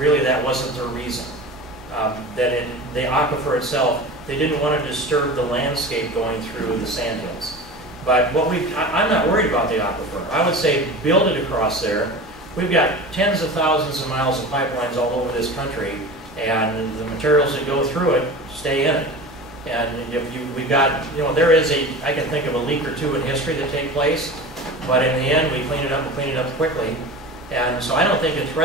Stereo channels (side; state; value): both; normal; correlation 0.33